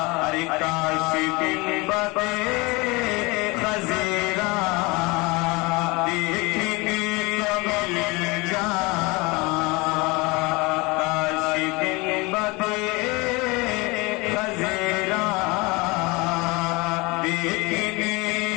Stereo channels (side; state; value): right; quieter; 25.2 dB